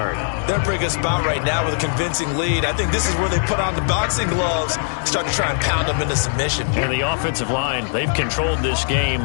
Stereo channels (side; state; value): right; silent; 56 dB below the other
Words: They're in a pretty good spot right now with a convincing lead. I think this is where they put on the boxing gloves, start to try and pound them into submission. And the offensive line, they've controlled this